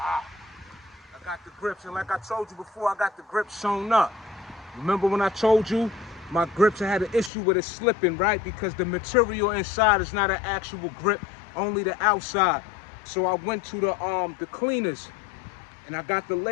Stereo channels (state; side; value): drops out; right; at 7.3 s